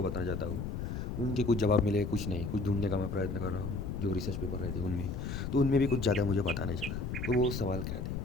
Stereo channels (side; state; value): left; noise; rumble, 4 dB below the sound